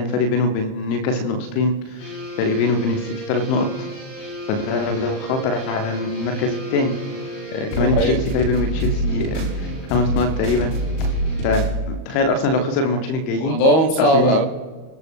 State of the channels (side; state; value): right; late; 37 ms